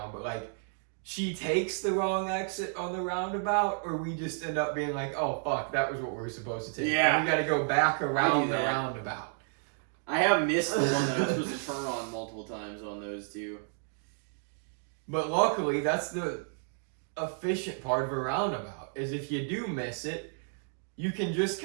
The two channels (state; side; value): silent; left; 57 dB below the other